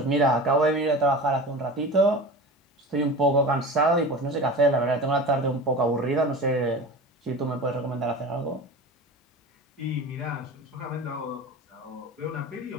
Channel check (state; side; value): normal; both; correlation 0.33